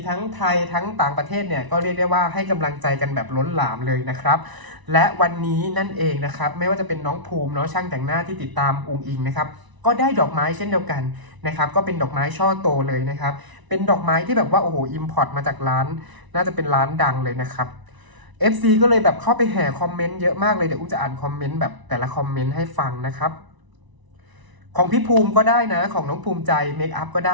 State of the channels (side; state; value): left; late; 1.0 ms